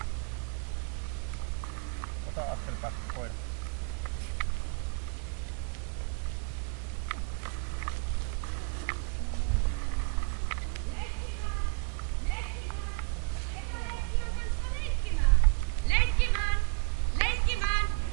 Ota askel päästä koira.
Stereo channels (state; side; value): quieter; left; 33.9 dB